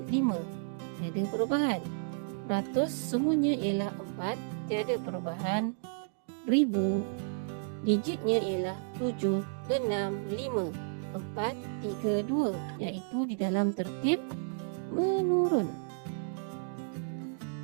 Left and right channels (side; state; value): left; silent; digital silence